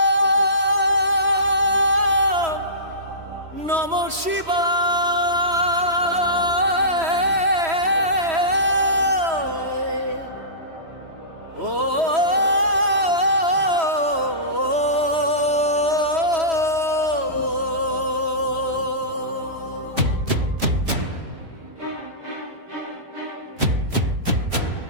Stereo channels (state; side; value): late; left; 3.1 ms